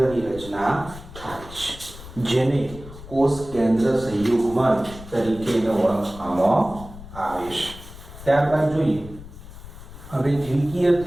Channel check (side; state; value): left; noise; rumble, 16 dB below the sound